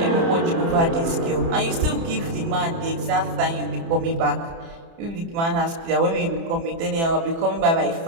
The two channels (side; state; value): left; late; 30 ms